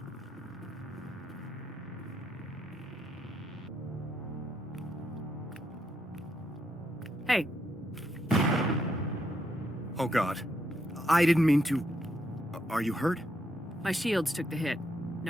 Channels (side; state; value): both; normal; correlation 0.78